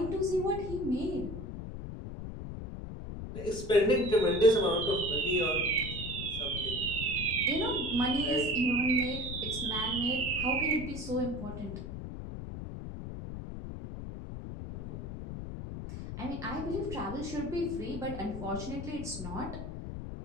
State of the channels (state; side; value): noise; left; rumble, 7 dB below the sound